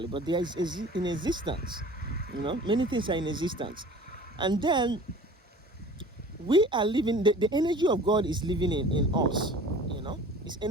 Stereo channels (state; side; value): normal; both; correlation 0.44